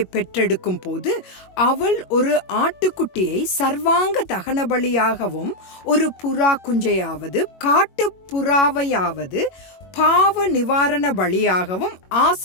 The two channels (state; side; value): late; right; 22 ms